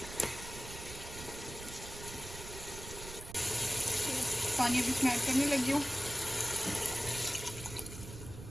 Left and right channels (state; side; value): noise; right; rumble, 12 dB below the sound